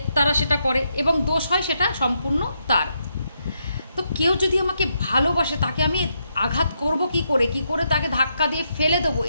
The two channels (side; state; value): both; inverted; correlation -0.80